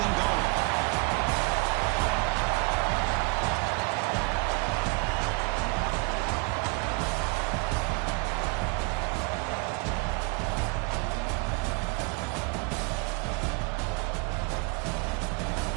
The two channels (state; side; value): quieter; left; 28.8 dB